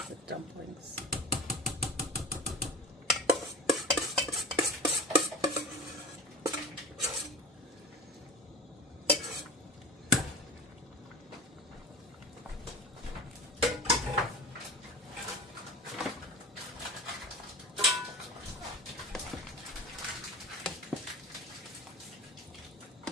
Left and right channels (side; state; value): both; normal; correlation 0.36